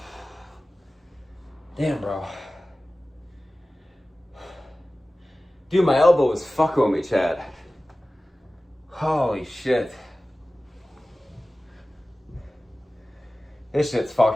Damn, bro. Dude, my elbow is fucking with me, Chad. Holy shit. This shit's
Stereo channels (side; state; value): both; normal; correlation 0.96